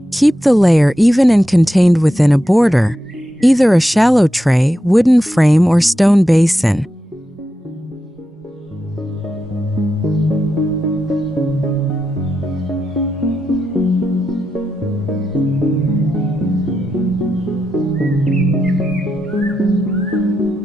Keep the layer even and contained within a border, either a shallow tray, wooden frame, or stone basin.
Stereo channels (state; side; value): normal; both; correlation 0.87